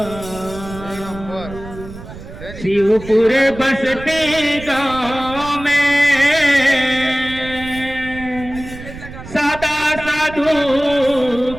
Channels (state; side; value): noise; right; rumble, 14 dB below the sound